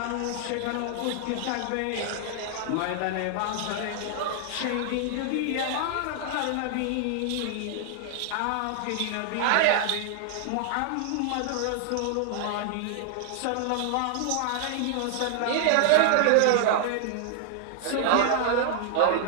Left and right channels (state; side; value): different; both; correlation 0.00